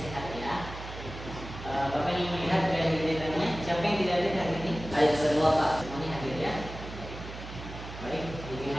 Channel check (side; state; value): right; noise; hum, 11 dB below the sound